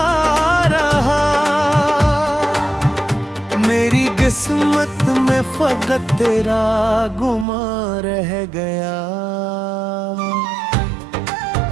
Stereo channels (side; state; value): left; drops out; at 7.5 s